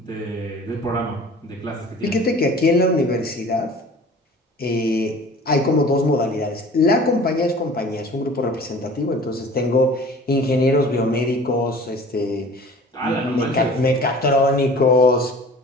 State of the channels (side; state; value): both; normal; correlation 0.45